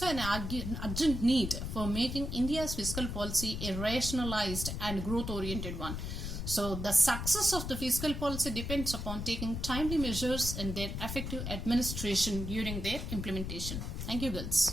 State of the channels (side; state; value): left; noise; rumble, 5 dB below the sound